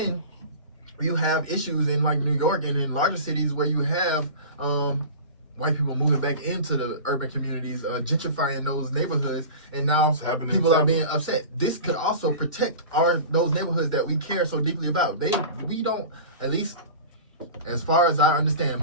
you have issues in like New York and in larger cities where you have white people moving back into the urban communities, gentrifying those neighborhoods, and now people are being upset. This could also protect those neighborhoods that we care so deeply about. We don't, at least as far as I understand,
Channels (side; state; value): both; inverted; correlation -0.35